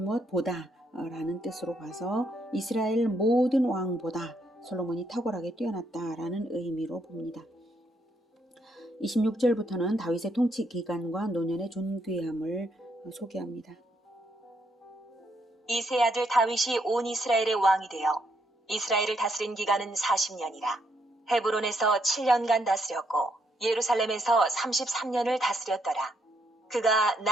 라는 뜻으로 봐서 이스라엘 모든 왕보다 솔로몬이 탁월하게 뛰어났다라는 의미로 봅니다. 26절부터는 다윗의 통치 기간과 노년의 존귀함을 소개합니다. 이 세 아들 다윗이 온 이스라엘의 왕이 되어 이스라엘을 다스린 기간은 40년이라. 헤브론에서 7년간 다스렸고 예루살렘에서 33년을 다스렸더라. 그가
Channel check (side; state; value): both; normal; correlation 0.75